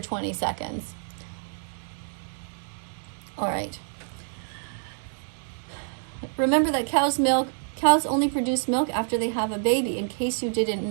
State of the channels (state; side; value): silent; left; digital silence